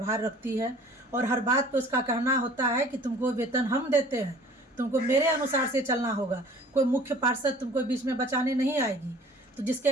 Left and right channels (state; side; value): normal; both; correlation 0.49